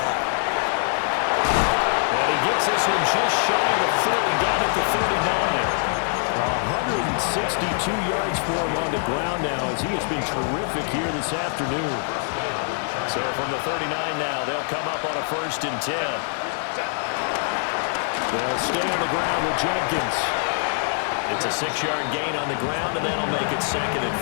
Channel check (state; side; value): silent; right; 62 dB below the other